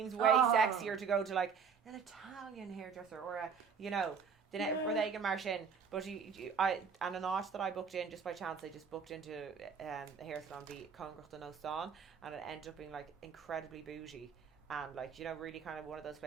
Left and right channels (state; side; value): quieter; left; 6.2 dB